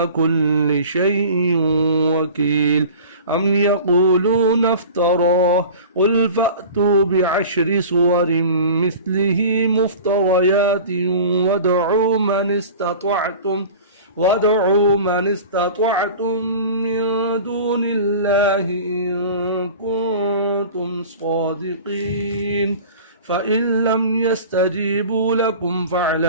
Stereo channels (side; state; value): both; inverted; correlation -0.39